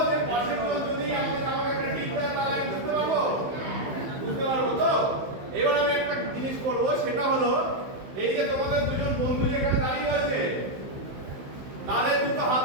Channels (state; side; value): late; left; 15 ms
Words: যে পাশের জন যদি আমাকে একটা টিপ দেয় তাহলে আমি বুঝতে পারবো তো। এবার আমি একটা জিনিস করবো, সেটা হলো এই যে তোমাদের দুজন বন্ধু যেখানে দাঁড়িয়ে আছে তাদের দুটো হাত